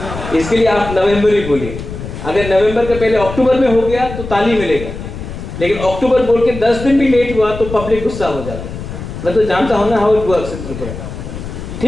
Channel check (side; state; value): left; noise; rumble, 9 dB below the sound